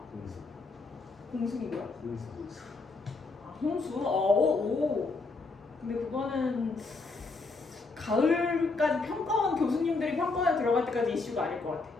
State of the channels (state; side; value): quieter; right; 3.8 dB